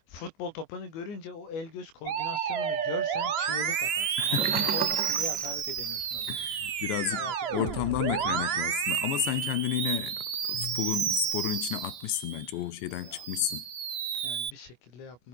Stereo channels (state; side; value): late; right; 14 ms